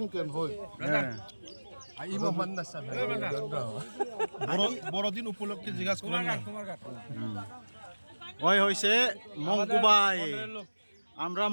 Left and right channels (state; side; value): inverted; both; correlation -1.00